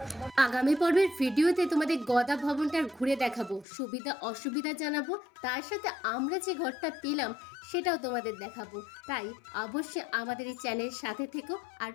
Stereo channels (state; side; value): drops out; right; at 3.7 s